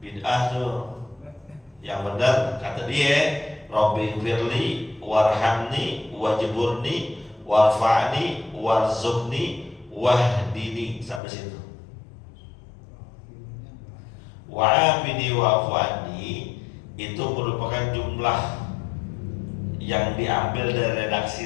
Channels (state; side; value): drops out; right; at 11.2 s